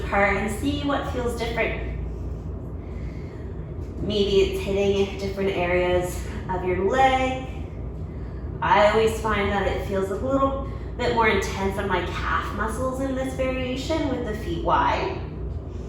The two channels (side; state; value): both; identical; correlation 1.00